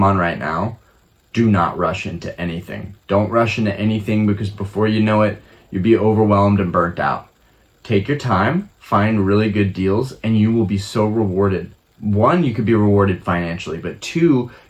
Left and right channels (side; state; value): both; identical; correlation 1.00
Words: right now, do not rush into anything. Don't rush into anything because before you know it, you'll be overwhelmed and burnt out. Take your time, find really good deals, and you will be so rewarded. One, you could be rewarded financially, but two,